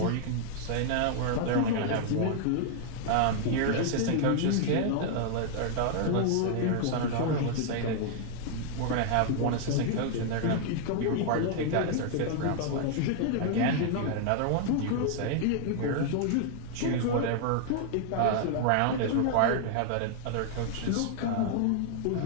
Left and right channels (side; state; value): both; different; correlation 0.00